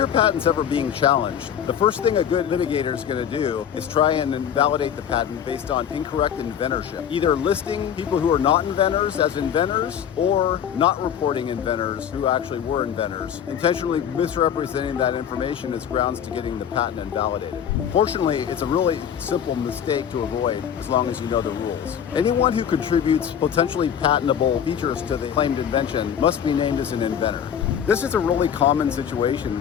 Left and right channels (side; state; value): right; quieter; 8.7 dB